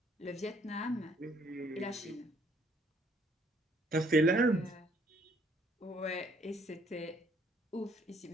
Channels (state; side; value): normal; both; correlation 0.65